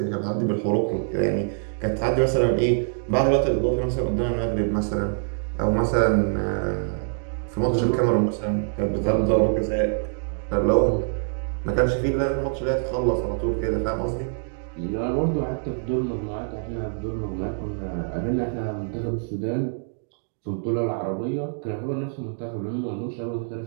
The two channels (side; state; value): left; silent; digital silence